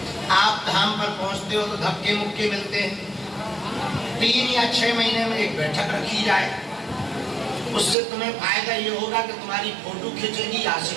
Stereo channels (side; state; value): left; drops out; at 8.0 s